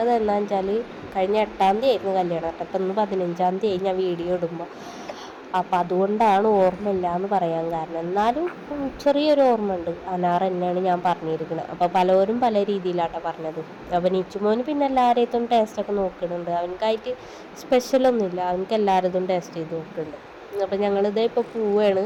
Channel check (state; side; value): identical; both; correlation 1.00